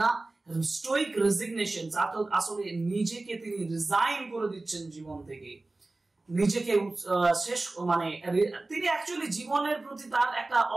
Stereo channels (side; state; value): left; quieter; 3.1 dB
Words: না স্টোইক রেজিগনেশন আসলে নিজেকে তিনি রিজাইন করে দিচ্ছেন জীবন থেকে, নিজেকে শেষ মানে তিনি অ্যাকচুয়ালি জীবনের প্রতি তার একটা